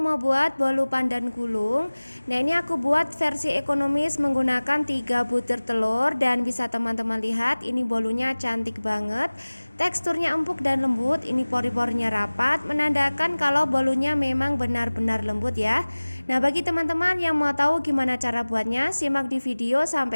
mau buat bolu pandan gulung. Nah, ini aku buat versi ekonomis menggunakan 3 butir telur. Dan bisa teman-teman lihat, ini bolunya cantik banget. Teksturnya empuk dan lembut. Ini pori-porinya rapat, menandakan kalau bolunya memang benar-benar lembut ya. Nah, bagi teman-teman yang mau tahu gimana cara buatnya, simak di video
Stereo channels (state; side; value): inverted; both; correlation -1.00